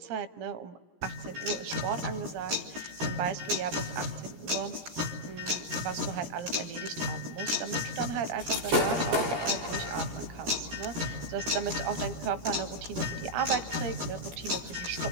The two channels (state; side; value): late; left; 17 ms